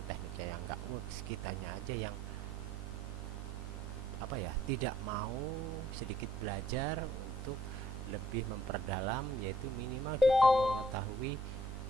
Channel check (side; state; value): both; normal; correlation 0.64